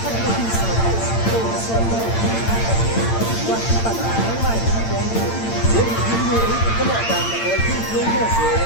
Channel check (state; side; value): late; right; 8.9 ms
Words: huy sự tôi sẽ quan tâm đến mai diễn viên người có một bạn là người thi thương của